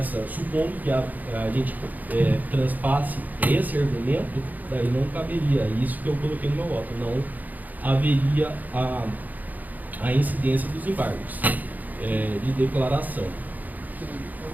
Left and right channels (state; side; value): late; left; 0.081 ms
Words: supondo que a gente transpasse esse argumento, daí não caberia, isso que eu coloquei no meu voto, não haveria a incidência dos embargos de declaração.